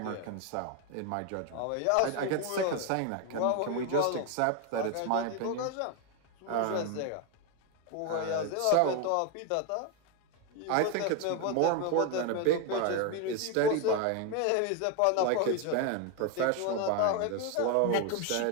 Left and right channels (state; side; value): different; both; correlation 0.01